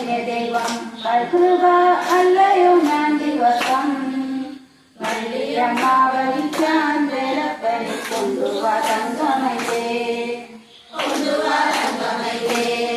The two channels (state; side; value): identical; both; correlation 1.00